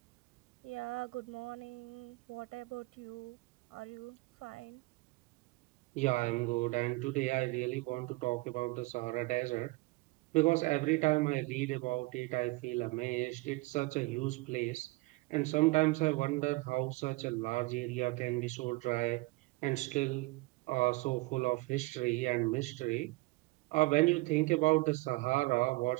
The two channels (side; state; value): left; quieter; 22.9 dB